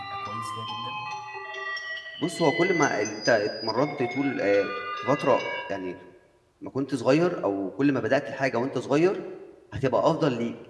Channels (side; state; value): both; identical; correlation 1.00